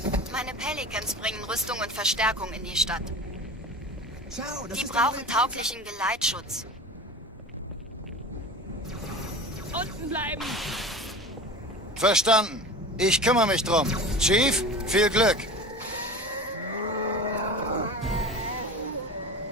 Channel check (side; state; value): both; normal; correlation 0.34